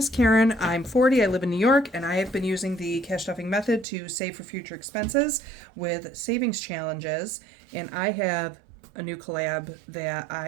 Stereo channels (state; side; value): drops out; left; at 3.9 s